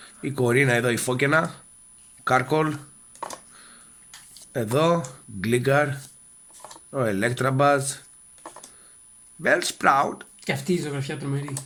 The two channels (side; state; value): both; identical; correlation 1.00